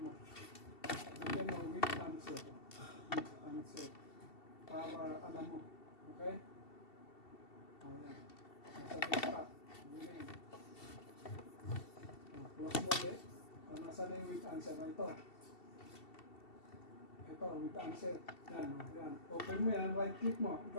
mo. Lagyan mo with answer. With answer. Para alam mo. Okay? O, yan. Nasa desktop. Ganyan. Close mo ulit. Nasa na yung with answer na ito. Ito, with answer. Yan, yan. Open mo yan, right click mo.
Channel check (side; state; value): right; late; 2.7 ms